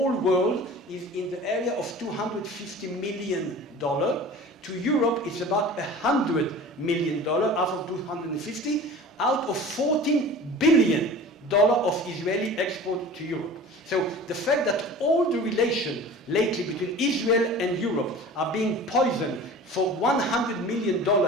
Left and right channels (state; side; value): normal; both; correlation 0.40